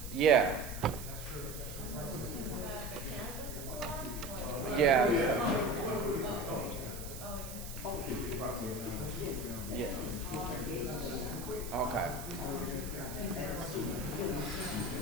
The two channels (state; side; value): noise; right; hiss, 11 dB below the sound